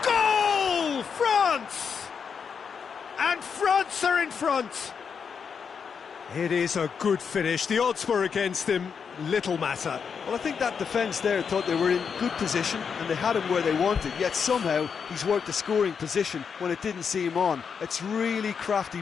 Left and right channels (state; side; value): quieter; right; 6.4 dB